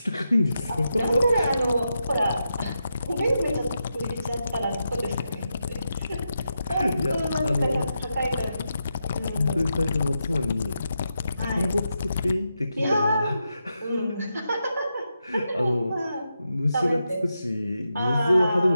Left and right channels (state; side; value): inverted; both; correlation -0.86